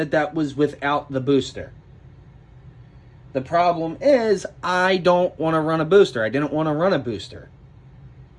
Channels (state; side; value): identical; both; correlation 1.00